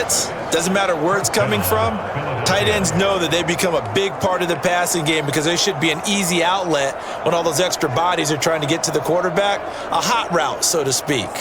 doesn't matter where it's coming from, tight ends know that they become a big part of the passing game because they should be an easy outlet when all those extra bodies are trying to get to the quarterback. A hot route, so to speak.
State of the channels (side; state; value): both; identical; correlation 1.00